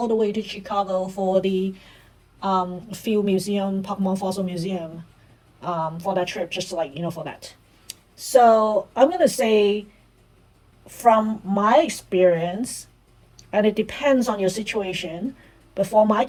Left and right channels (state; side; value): identical; both; correlation 1.00